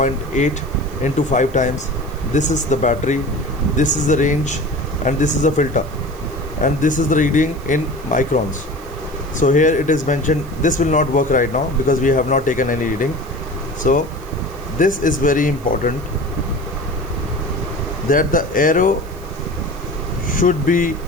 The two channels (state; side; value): noise; right; hiss, 24 dB below the sound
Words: into 5 times. This is the battery, this is the range, and this is the filter, and this is the reading in microns. So here it is mentioned. This will not work right now because we have not taken any reading. So this is very important. that the arrow should be